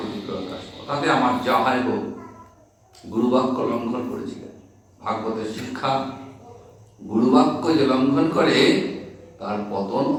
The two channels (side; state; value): both; identical; correlation 1.00